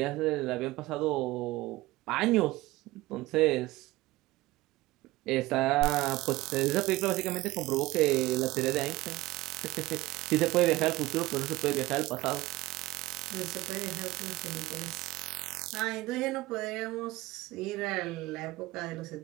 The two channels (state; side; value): quieter; left; 18.9 dB